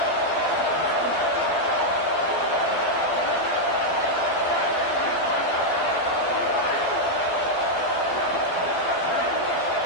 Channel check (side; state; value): right; late; 12 ms